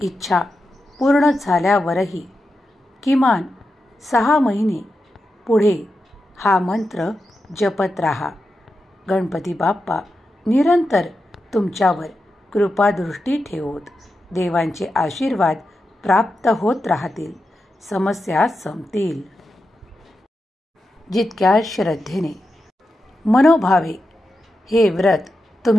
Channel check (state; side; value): normal; both; correlation 0.89